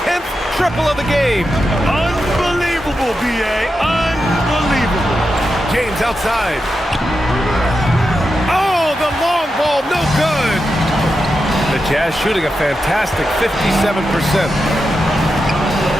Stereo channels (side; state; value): both; normal; correlation 0.88